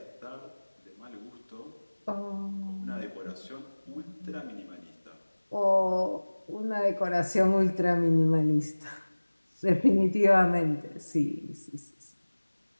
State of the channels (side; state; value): both; inverted; correlation -1.00